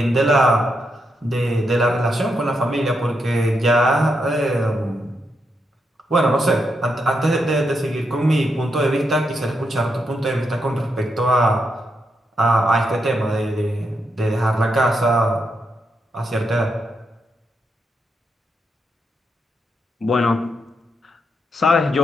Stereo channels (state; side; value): normal; both; correlation 0.82